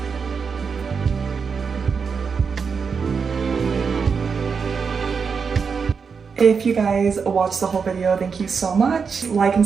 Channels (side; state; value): left; quieter; 5.7 dB